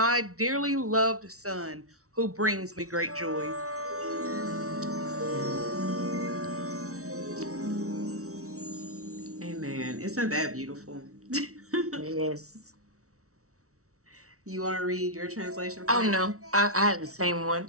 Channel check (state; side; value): late; left; 0.64 ms